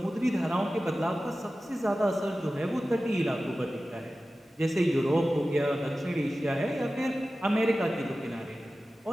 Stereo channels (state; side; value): normal; both; correlation 0.95